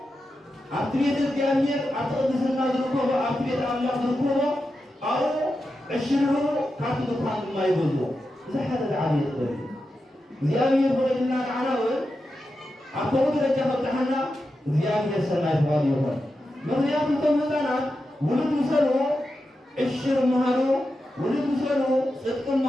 ኣብቲ ቤተ እግዚኣብሔር ኣብቲ ቅድስና ዝርከቦ ኣብቲ ቤተ ኣምላኽ ዝርከቦ ኣብኡ ዕሽርሩ ካብቲ ድኳን ድማ ይገዝዎ እዚ ሓደ ዝዓበየ ጥበብ እዩ እግዚኣብሔር ፈቒድልና ንዓና እውን ኣብ ከምኡ ደረጃ ከብፅሓና እግዚኣብሔር ሰናይ ተባሂሉ ይኹን ምክንያቱ እቶም ህፃናት ውሉድ ምሰሉ ዕሽር መሃሩ ውሉድ ምሰሉ ፅድቂ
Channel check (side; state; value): both; normal; correlation 0.89